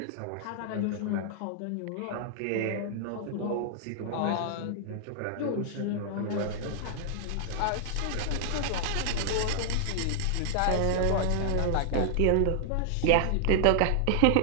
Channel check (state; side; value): different; both; correlation -0.01